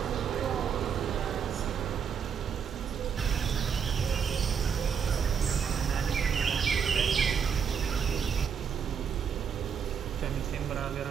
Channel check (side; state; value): left; quieter; 7.0 dB